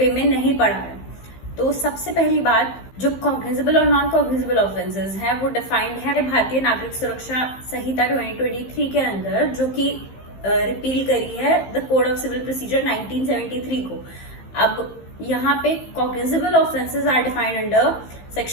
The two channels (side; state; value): right; late; 15 ms